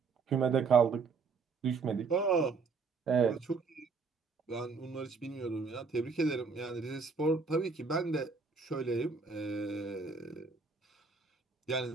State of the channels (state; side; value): quieter; left; 4.7 dB